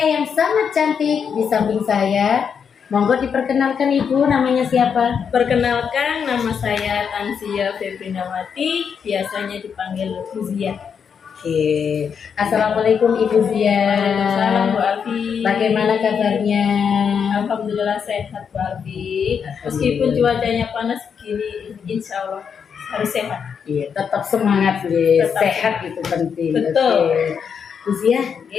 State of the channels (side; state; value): right; quieter; 6.9 dB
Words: yang sangat cantik di samping saya. Monggo diperkenalkan Ibu, namanya siapa? Perkenalkan, nama saya Tansia Febrinawati, biasanya dipanggil Bu Zia. Oke, Assalamualaikum Ibu Zia. Waalaikumsalam Bu Alfi. Bagaimana kabarnya? Alhamdulillah sehat Bu Alfi. Meskipun cuacanya panas gini, insya Allah harus sehat. Iya, tetap semangat deh. Tetap Sehat itu penting. Betul. Oke. Bu Zia,